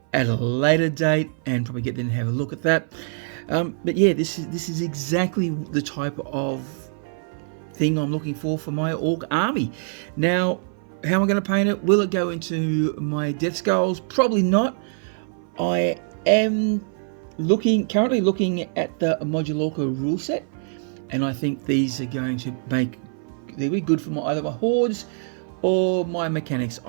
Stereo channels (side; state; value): left; silent; 58 dB below the other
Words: at a later date and probably get them to have a look at that. But yeah, this is exactly the type of thing I'm looking for my orc army. Now, how am I going to paint it? Will it go into my Def Skulls? Probably not. I am currently looking at the Modulork rule set, and I think these are going to they'll be good for either my hordes or my mechanics.